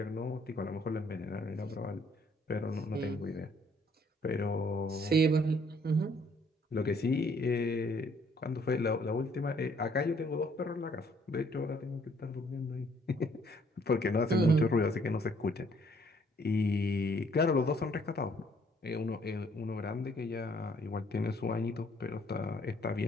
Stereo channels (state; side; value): normal; both; correlation 0.64